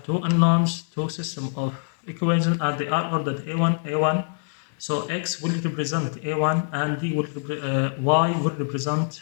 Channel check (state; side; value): silent; right; digital silence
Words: two unknowns, two system of equations, and they are ordered A1, A1. So x will represent A1 and y will represent